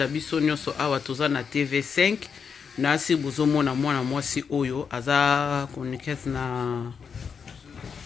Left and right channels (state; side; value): quieter; right; 6.3 dB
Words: biso nyonso awa toza na TV5. Nasi bozomona mwana mwasi oyo aza chroniqueuse